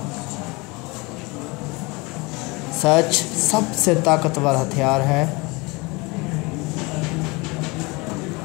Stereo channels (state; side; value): quieter; right; 25.9 dB